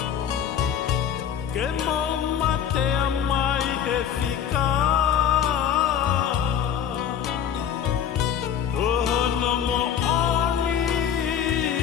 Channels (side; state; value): right; quieter; 8.6 dB